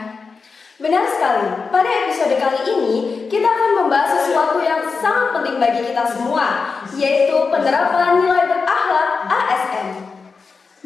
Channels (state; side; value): quieter; right; 4.8 dB